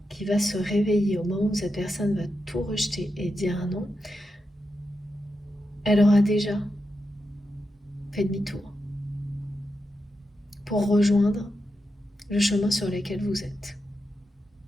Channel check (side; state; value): both; normal; correlation 0.88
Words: qui va se réveiller au moment où cette personne va tout rejeter et dire non, elle aura déjà fait demi-tour pour rejoindre le chemin sur lequel vous êtes.